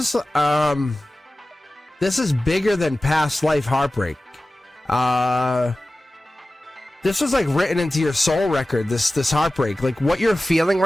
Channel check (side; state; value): both; normal; correlation 0.96